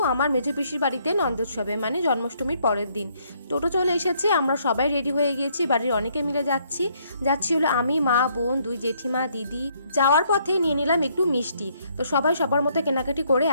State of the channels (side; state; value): both; inverted; correlation -0.68